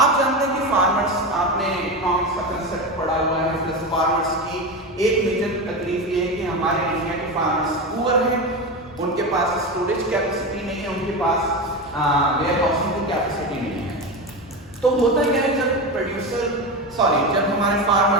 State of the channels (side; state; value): both; normal; correlation 0.20